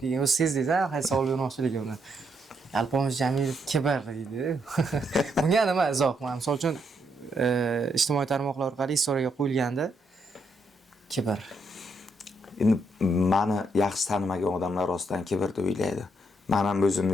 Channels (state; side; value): normal; both; correlation 0.76